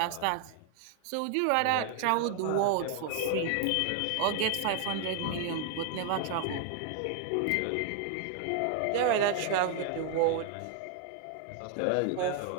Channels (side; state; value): both; different; correlation 0.00